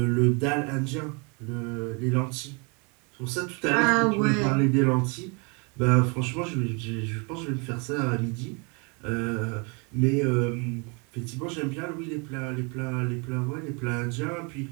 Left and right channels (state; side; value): quieter; left; 32.5 dB